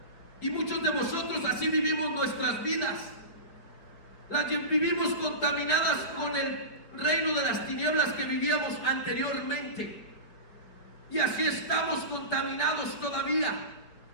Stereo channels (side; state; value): right; late; 4.8 ms